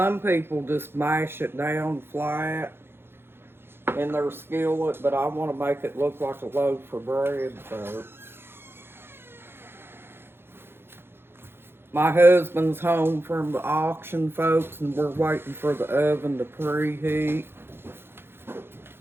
people just mash it down flat in their skillet, but I want to make it look like a loaf of bread, folks. My husband's home from the auction, folks, and we're waiting for the oven to preheat.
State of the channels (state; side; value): late; left; 0.11 ms